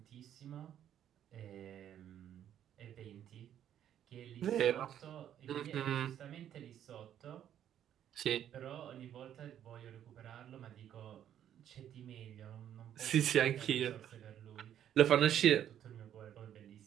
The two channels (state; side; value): quieter; left; 10.4 dB